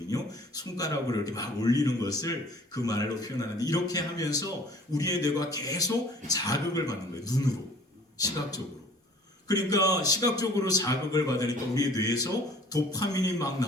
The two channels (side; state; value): both; normal; correlation 0.51